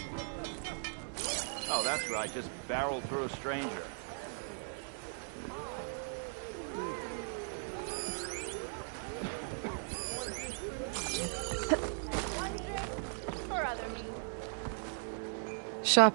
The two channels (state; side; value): silent; left; 53 dB below the other